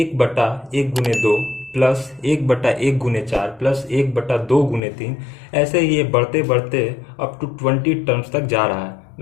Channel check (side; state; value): right; drops out; at 4.8 s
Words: × 2 प्लस 1/1 × 4 प्लस 1/2 × 3, ऐसे ही ये बढ़ते बढ़ते अप टू 20 टर्म्स तक जा रहा है।